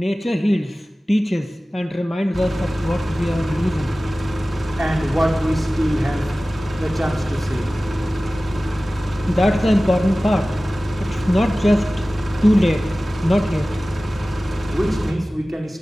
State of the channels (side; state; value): both; normal; correlation 0.97